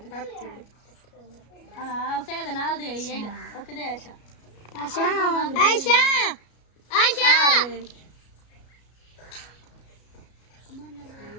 ਆਪ ਚੜੇ ਹਾਂ ਉਸੇ ਦੇ ਨਾਲ ਦੇ ਆਈ ਉਹ ਕਿਦੇ ਆਇਸ਼ਾ ਆਇਸ਼ਾ ਆਇਸ਼ਾ ਆਇਸ਼ਾ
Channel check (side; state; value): right; late; 33 ms